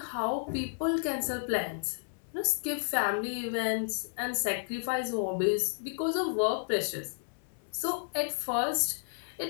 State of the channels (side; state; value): right; silent; 56 dB below the other